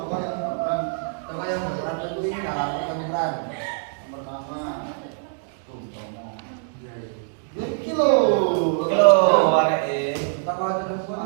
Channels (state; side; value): silent; left; 63 dB below the other